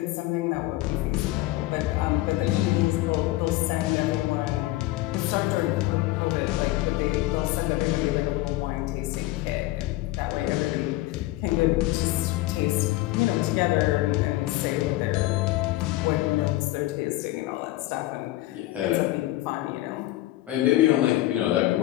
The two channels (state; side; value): quieter; right; 17.3 dB